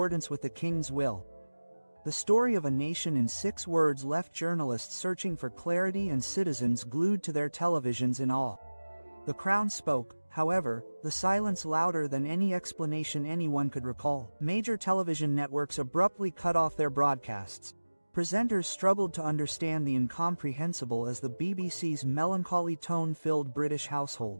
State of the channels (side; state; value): both; inverted; correlation -1.00